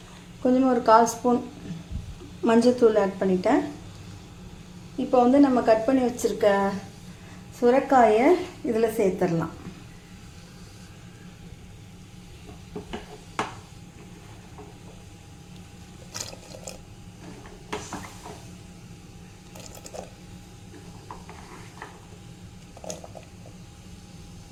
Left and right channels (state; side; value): identical; both; correlation 1.00